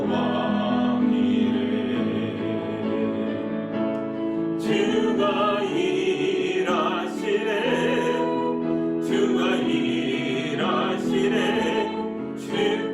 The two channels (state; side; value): identical; both; correlation 1.00